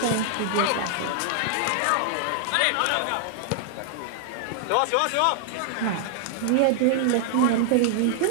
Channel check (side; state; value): both; different; correlation -0.01